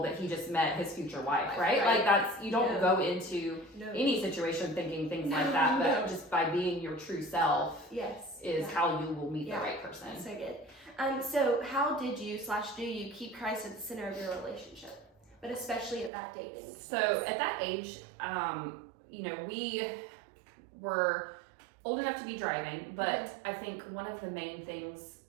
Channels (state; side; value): drops out; left; at 16.1 s